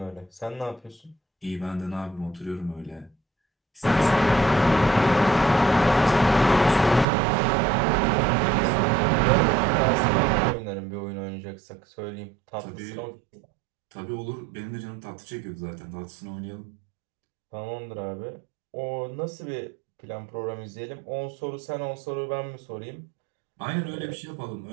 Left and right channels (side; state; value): left; drops out; at 7.1 s